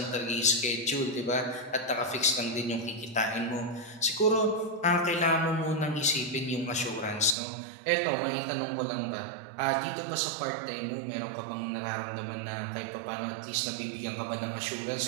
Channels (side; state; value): left; drops out; at 7.4 s